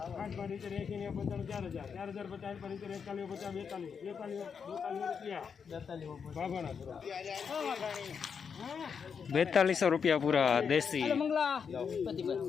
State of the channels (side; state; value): right; quieter; 6.5 dB